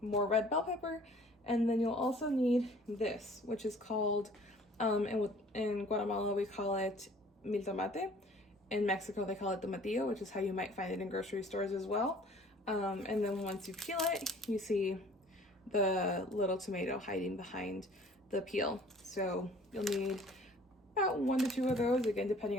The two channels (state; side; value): normal; both; correlation 0.52